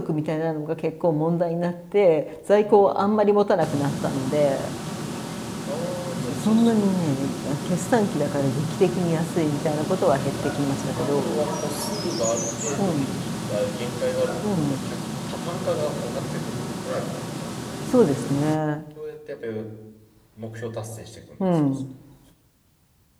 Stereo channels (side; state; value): both; identical; correlation 1.00